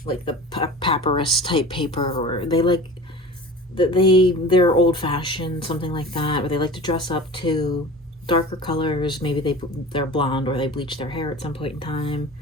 like the papyrus type paper, or they like they're old fashioned, something like that. Or they like to dress up to darker colors. Maybe they're blonde or they bleach their hair at some point in time.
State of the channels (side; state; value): both; normal; correlation 0.36